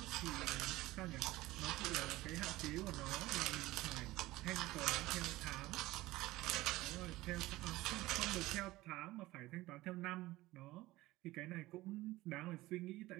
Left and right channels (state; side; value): quieter; left; 18.2 dB